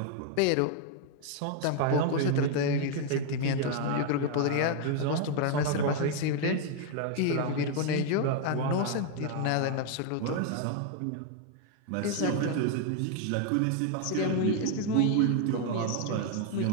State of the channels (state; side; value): different; both; correlation 0.00